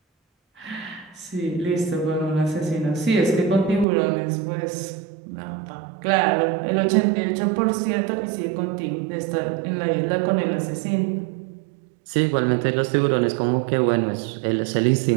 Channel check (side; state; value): left; drops out; at 3.9 s